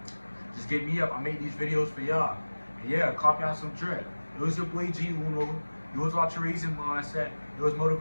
Just get me up. I make these videos for y'all. And yeah, copy out some drip. It was your boy G Uno. You was watching Raising Mindset. It was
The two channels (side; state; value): both; inverted; correlation -1.00